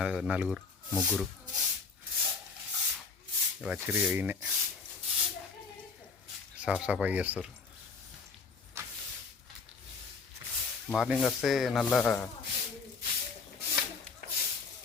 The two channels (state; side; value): quieter; right; 4.7 dB